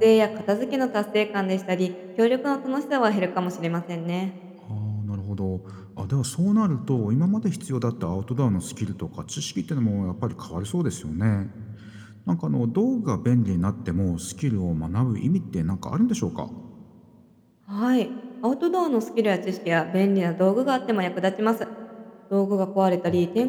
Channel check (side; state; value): both; identical; correlation 1.00